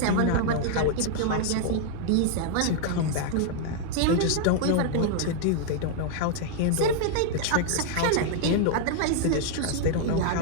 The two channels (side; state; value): both; different; correlation -0.01